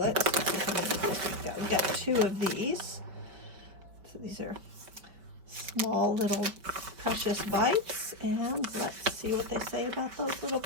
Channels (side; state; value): left; late; 5.1 ms